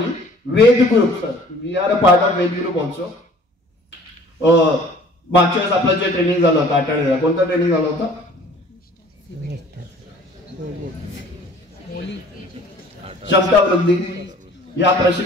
Ved group. Sir we are a part of Ved group also. मागच्या वेळेस आपलं जे ट्रेनिंग झालं होतं आठवड्याला, कोणतं ट्रेनिंग झालं होतं? क्षमता वृद्धी. या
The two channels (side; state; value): both; normal; correlation 0.51